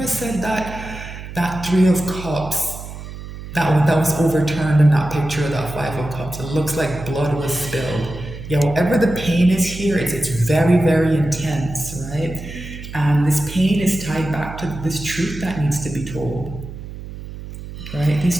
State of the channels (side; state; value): right; noise; hum, 11 dB below the sound